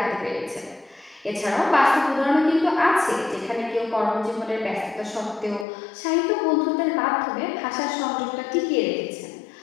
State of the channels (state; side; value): drops out; right; at 5.7 s